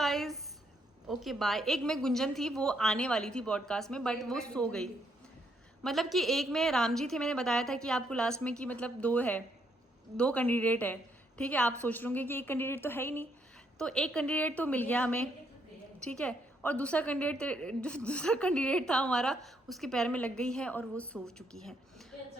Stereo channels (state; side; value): normal; both; correlation 0.73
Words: ओके बाय। एक में गुंजन थी, वो आने वाली थी पॉडकास्ट में, बट वो सो गई। मतलब कि एक में राम जी थे, मैंने बताया था कि आपको लास्ट में कि मतलब 2 कैंडिडेट है, ठीक है। आप सोच रहे कि एक कैंडिडेट तो है ही नहीं, तो एक कैंडिडेट तो मिल गया हमें, ठीक है। और दूसरा कैंडिडेट था हमारा, उसके पैर में लग गई है और वो सो चुकी है।